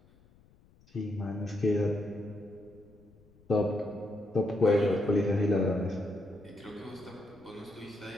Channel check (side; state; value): left; noise; rumble, 29 dB below the sound